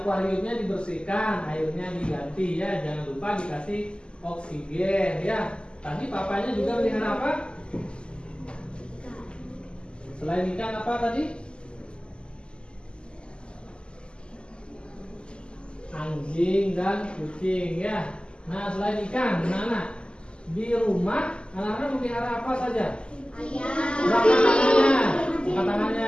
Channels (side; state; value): right; late; 0.051 ms